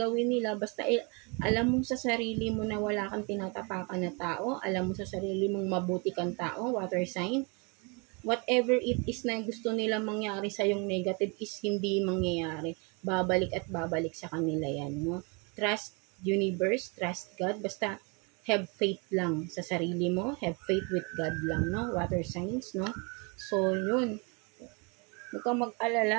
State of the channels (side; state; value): left; quieter; 31.8 dB